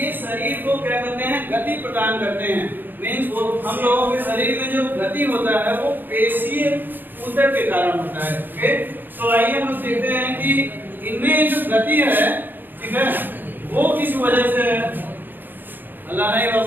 शरीर को क्या करते हैं, गति प्रदान करते हैं। मींस वो हम लोगों के शरीर में जो गति होता है वो पेशीय ऊतक के कारण होता है। ओके, तो आइए हम लोग देखते हैं कि इनमें जो गति है, ठीक है, वो किस वजह से है। अल्लाह नहीं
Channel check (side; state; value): left; late; 0.091 ms